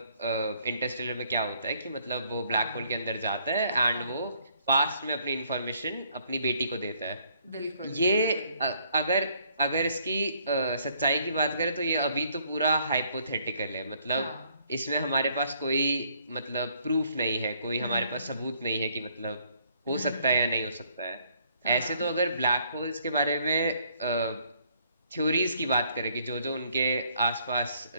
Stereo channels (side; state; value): both; inverted; correlation -0.66